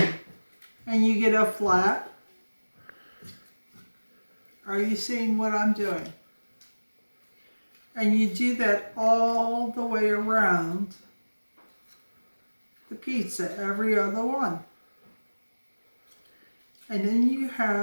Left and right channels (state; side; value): inverted; both; correlation -1.00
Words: you get a flap. Are you seeing what I'm doing? And you do that all the way around the pizza, every other one. And then you